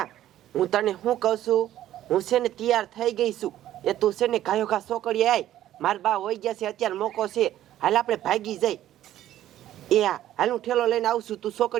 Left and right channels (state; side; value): quieter; left; 12.8 dB